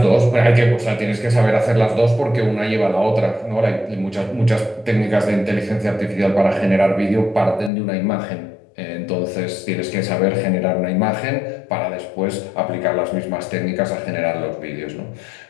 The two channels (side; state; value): right; drops out; at 7.7 s